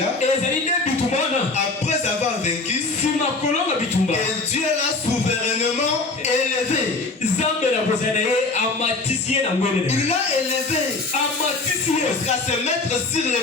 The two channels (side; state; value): right; quieter; 3.5 dB